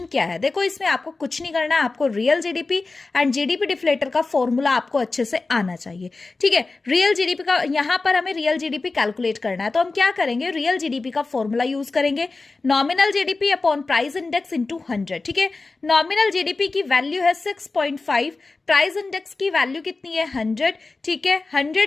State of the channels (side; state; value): right; quieter; 3.7 dB